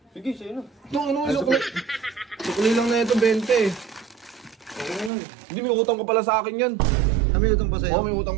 Sige, sa'yo na. Ito, ano, sukli. Sukli lang na ito, 20. Okay na lang. Hindi, may utang ka pala sa akin yan. May utang pa sa'yo? Oo, may utang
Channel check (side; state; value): left; drops out; at 5.1 s